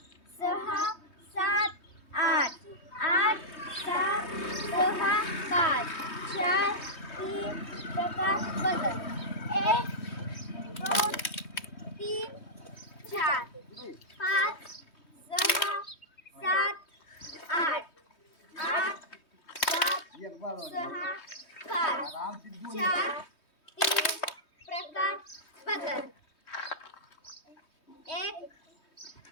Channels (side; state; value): right; late; 3.2 ms